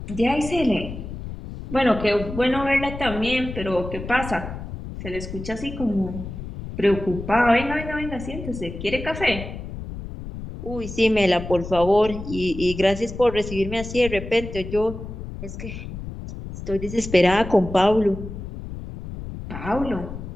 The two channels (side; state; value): left; noise; rumble, 9 dB below the sound